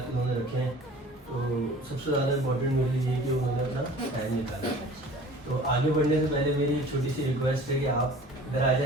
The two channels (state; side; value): normal; both; correlation 0.46